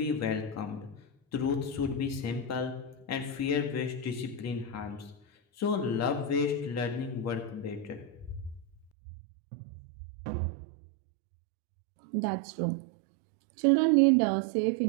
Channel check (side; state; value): left; drops out; at 8.9 s